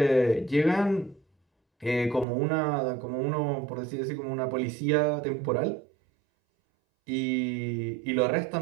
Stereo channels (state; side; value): drops out; left; at 2.2 s